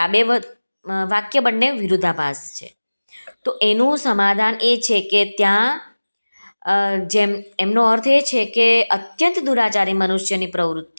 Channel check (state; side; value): inverted; both; correlation -1.00